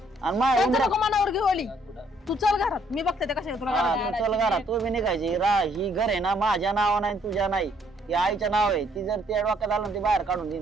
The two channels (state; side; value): normal; both; correlation 0.66